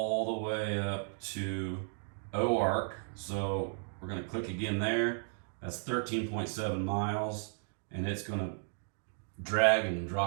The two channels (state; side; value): silent; left; digital silence